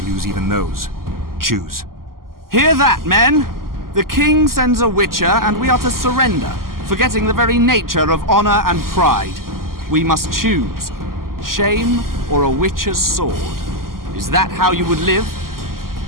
lose even those. Choose. Hear that, men! The king sends a witcher, and we are to surrender, forgetting the very nature of honor and pride. We must choose. Shame or a witcher's sword. Is that how you would live?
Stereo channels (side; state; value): left; late; 0.92 ms